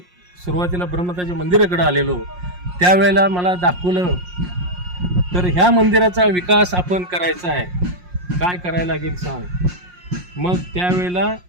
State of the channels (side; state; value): left; late; 5.6 ms